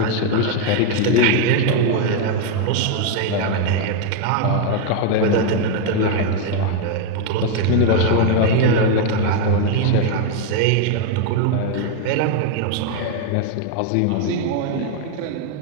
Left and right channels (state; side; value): different; both; correlation 0.01